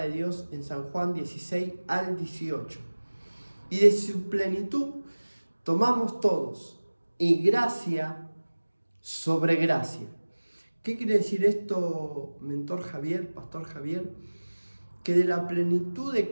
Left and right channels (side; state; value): both; inverted; correlation -1.00